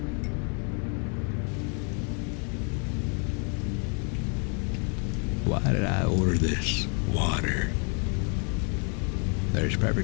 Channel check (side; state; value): right; quieter; 38.4 dB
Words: Why did I order this water? There's